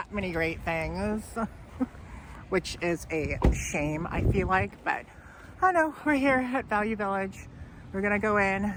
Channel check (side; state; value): both; identical; correlation 1.00